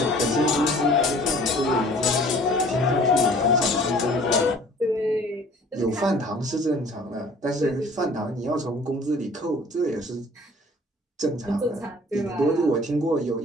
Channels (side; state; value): both; normal; correlation 0.51